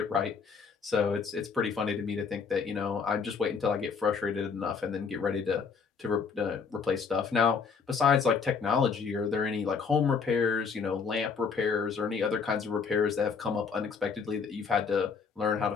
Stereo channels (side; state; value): right; quieter; 5.7 dB